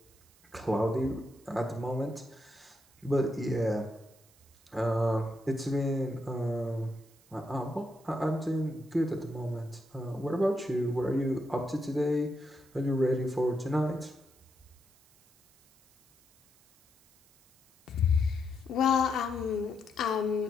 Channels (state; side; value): noise; right; hiss, 29 dB below the sound